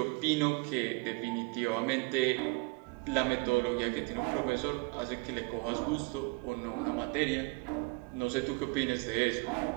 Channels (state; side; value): quieter; left; 27.9 dB